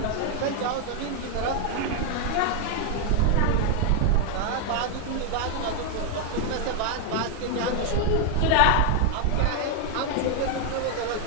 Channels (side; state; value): both; different; correlation 0.00